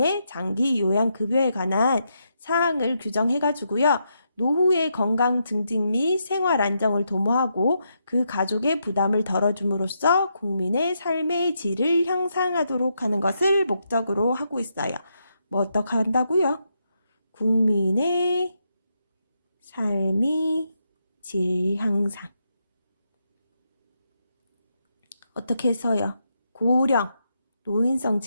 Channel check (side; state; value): both; inverted; correlation -0.81